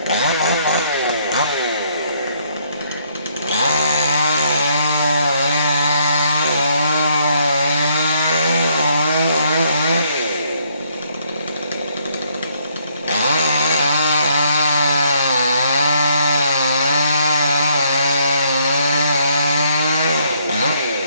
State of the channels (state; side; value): inverted; both; correlation -0.68